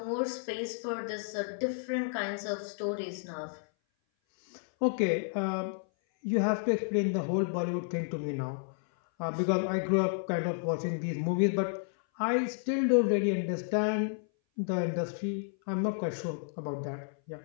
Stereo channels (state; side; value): silent; right; 57 dB below the other